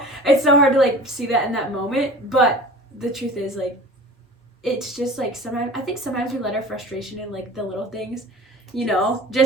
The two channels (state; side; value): normal; both; correlation 0.41